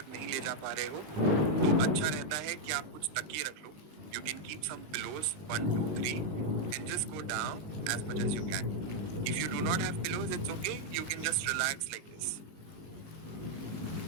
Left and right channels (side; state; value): left; late; 20 ms